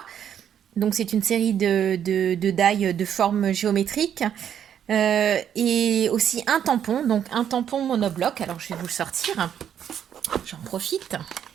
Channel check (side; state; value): left; quieter; 9.2 dB